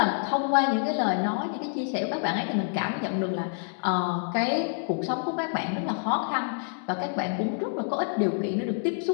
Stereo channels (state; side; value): silent; right; digital silence